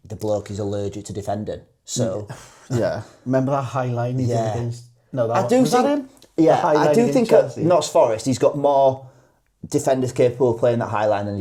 the bloke is allergic to defending. So yeah, remember that high line he did against? No, that was that him? Yeah, I do think at Notts Forest he's got more defenders capable of playing that high line than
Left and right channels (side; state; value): both; identical; correlation 1.00